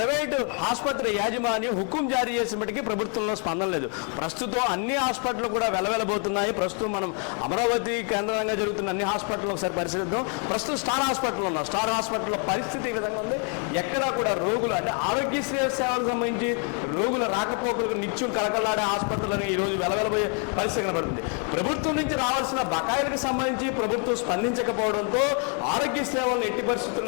ఆసుపత్రి యాజమాన్యం హుకుం జారీ చేసినప్పటికీ ప్రభుత్వంలో స్పందన లేదు. ప్రస్తుతం అన్ని హాస్పిటల్ కూడా వెలవెలబోతున్నాయి. ప్రస్తుతం మనం అమరావతి కేంద్రంగా జరుగుతున్న అన్ని హాస్పిటల్ ఒకసారి పరిశీలిద్దాం. ప్రస్తుతం స్టార్ హాస్పిటల్ ఉన్నాం. స్టార్ హాస్పిటల్లో పరిస్థితి ఈ విధంగా ఉంది. ఎక్కడా కూడా రోగులు అంటే ఆరోగ్యశ్రీ సేవలకు సంబంధించి రోగుల రాకపోకలకు నిత్యం కలకలాడే హాస్పిటల్ని ఈరోజు వెలవెలబోయే పరిస్థితి కనబడుతుంది. ప్రభుత్వం నుంచి రావాల్సిన బకాయిలకు సంబంధించి ప్రభుత్వం స్పందించకపోవడంతో ఆరోగ్య సేవలను ఎట్టి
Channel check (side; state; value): right; quieter; 39.7 dB